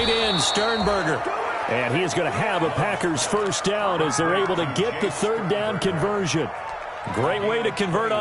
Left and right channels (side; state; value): both; identical; correlation 1.00